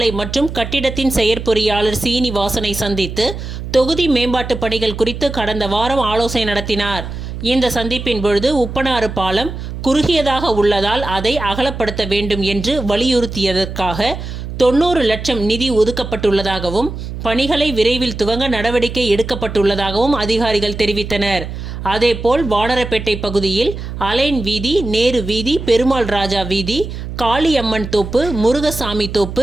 மற்றும் கட்டிடத்தின் செயற்பொறியாளர் சீனிவாசனை சந்தித்து தொகுதி மேம்பாட்டு பணிகள் குறித்து கடந்த வாரம் ஆலோசனை நடத்தினார். இந்த சந்திப்பின் பொழுது உப்பனாறு பாலம் குறுகியதாக உள்ளதால் அதை அகலப்படுத்த வேண்டும் என்று வலியுறுத்தியதற்காக 90 லட்சம் நிதி ஒதுக்கப்பட்டுள்ளதாகவும் பணிகளை விரைவில் துவங்க நடவடிக்கை எடுக்கப்பட்டுள்ளதாகவும் அதிகாரிகள் தெரிவித்தனர். அதேபோல் வானரப்பேட்டை பகுதியில் அலைன் வீதி, நேரு வீதி, பெருமாள் ராஜா வீதி, காளியம்மன் தோப்பு, முருகசாமி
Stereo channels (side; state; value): right; noise; hum, 8 dB below the sound